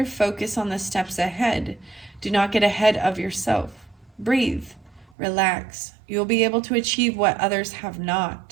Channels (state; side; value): drops out; left; at 5.1 s